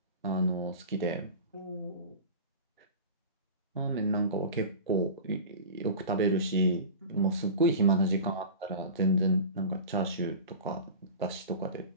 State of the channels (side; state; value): both; inverted; correlation -0.32